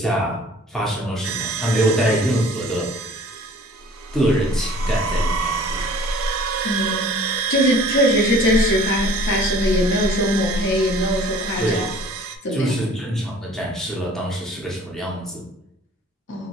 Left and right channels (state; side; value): normal; both; correlation 0.49